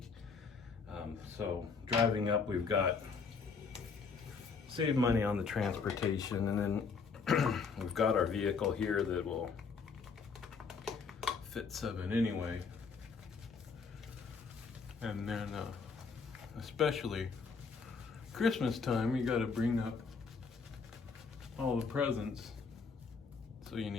So driving up, we've got saved money on the transportation, and then we've got our vehicle here that will fit 7 anyway. And then especially Christmas time, you got to bring up all the presents. So you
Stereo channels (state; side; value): quieter; right; 5.2 dB